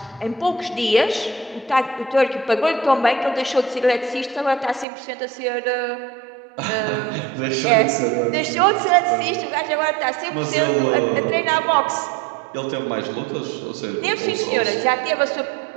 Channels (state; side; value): drops out; left; at 4.9 s